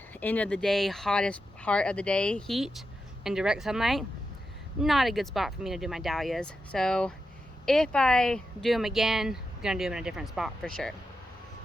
end of the day, hottest part of the day heat and direct sunlight. Not a good spot for me to do my dahlias. So if I do them again, I'm gonna do them in a different spot for sure.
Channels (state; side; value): normal; both; correlation 0.88